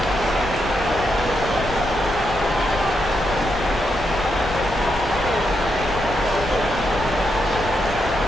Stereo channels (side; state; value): left; noise; rumble, 10 dB below the sound